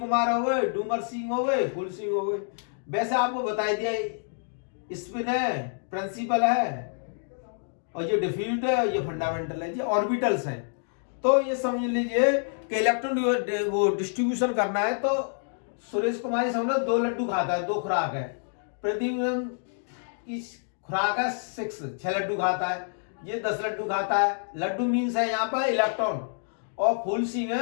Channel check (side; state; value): right; silent; digital silence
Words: हो गए, डूमर सिंह हो गए, फूल सिंह हो गए। वैसे आपको बता दिया स्पिन है, प्रिंसिपल है, और ये डिफ्यूज्ड है, ये फंडामेंटल है, ये ऑर्बिटल्स हैं। तो ये समझ लीजिए कि इलेक्ट्रॉन वो डिस्ट्रीब्यूशन करना है तो सुरेश कुमार समझ 2 लड्डू खाता है, 2 खुराक है। प्रदीप की खुराक है 6 लड्डू खाता है, ये 10 लड्डू खाता है। लड्डू मीन्स है यहाँ पर इलेक्ट्रॉन। और फूल सिंह